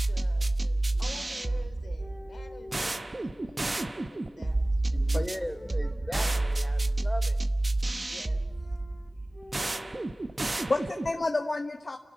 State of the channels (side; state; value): both; normal; correlation 0.98